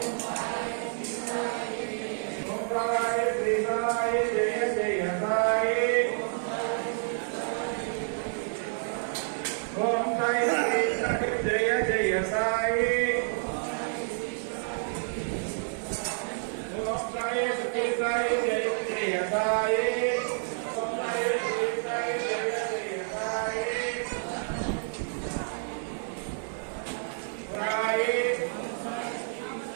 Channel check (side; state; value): left; silent; digital silence